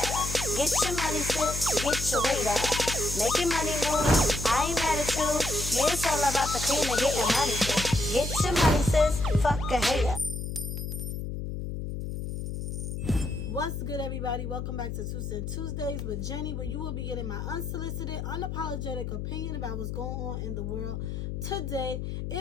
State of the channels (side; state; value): left; noise; hum, 5 dB below the sound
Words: Get your money, sis, get your weight up. Make your money move, I ain't mad at you. Yeah, it's all about the cream and getting money, sis. Get your money, sis, fuck a hater. What's good, everybody? Welcome back to Two Cent Tuesdays with Jenny, where you will be getting my unsolicited, unapologetic opinion about what's going on in the world today.